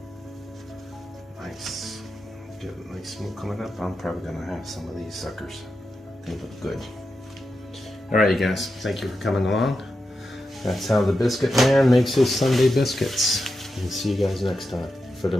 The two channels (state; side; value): normal; both; correlation 0.88